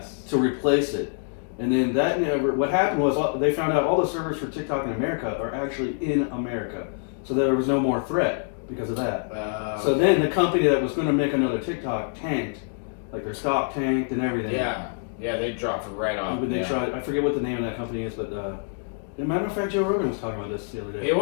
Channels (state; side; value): silent; right; 61 dB below the other